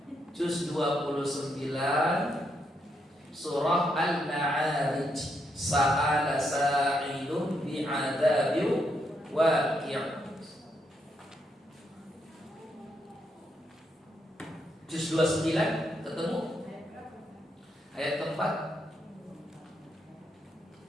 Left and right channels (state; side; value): normal; both; correlation 0.79